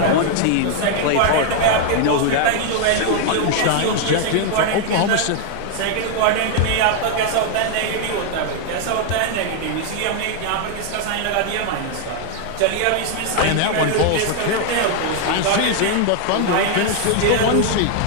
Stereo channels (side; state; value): both; different; correlation 0.00